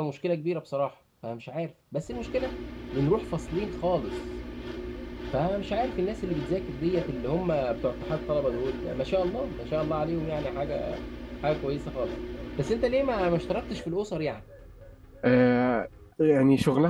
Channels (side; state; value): both; identical; correlation 1.00